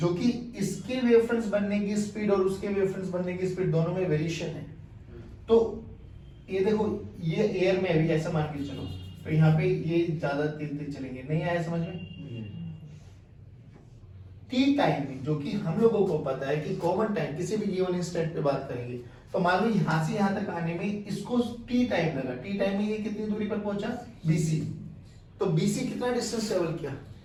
कि इसके वेव फ्रंट्स बनने की स्पीड और उसके वेव फ्रंट्स बनने की स्पीड दोनों में वेरिएशन है। तो ये देखो ये एयर में अभी ऐसा मान के चलो तो यहाँ पे ये ज्यादा तेज चलेंगे। नहीं आया समझ में? टी टाइम में जो कि हम लोगों को पता है कि कॉमन टाइम किसी भी गिवन इंस्टेंट पे बात करेंगे तो मान लो यहां से यहां तक आने में इसको टी टाइम लगा। टी टाइम में ये कितनी दूरी पर पहुंचा? BC। तो BC कितना डिस्टेंस ट्रेवल किया?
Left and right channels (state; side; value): identical; both; correlation 1.00